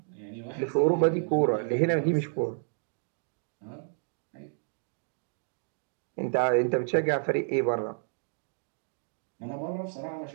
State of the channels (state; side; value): silent; left; 57 dB below the other